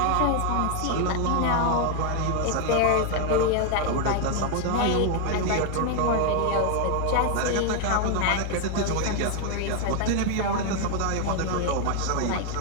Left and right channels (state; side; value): different; both; correlation 0.00